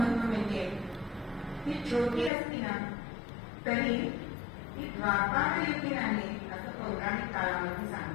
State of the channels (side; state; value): right; drops out; at 2.3 s